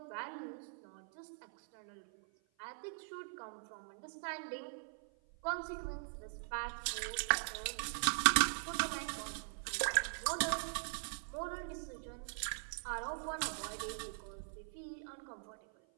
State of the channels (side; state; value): left; silent; 50 dB below the other